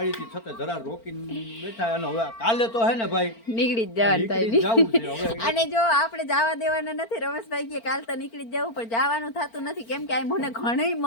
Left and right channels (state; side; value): late; right; 4.4 ms